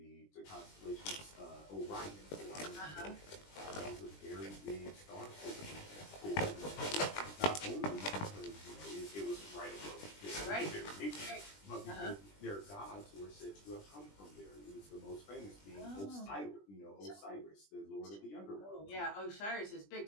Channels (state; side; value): late; right; 20 ms